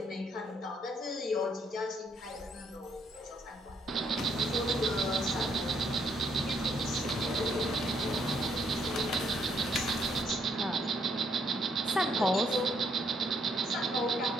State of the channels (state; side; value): normal; both; correlation 0.71